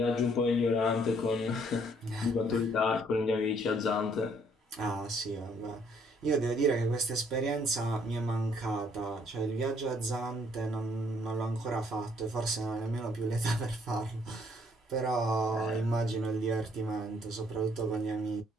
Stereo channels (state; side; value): normal; both; correlation 0.65